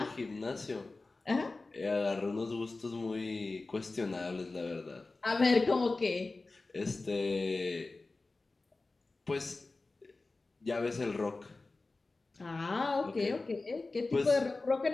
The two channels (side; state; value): right; quieter; 3.4 dB